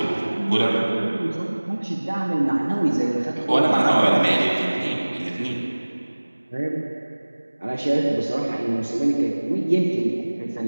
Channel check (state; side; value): inverted; both; correlation -1.00